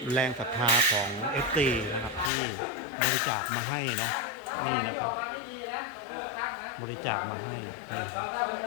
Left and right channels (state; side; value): drops out; right; at 2.3 s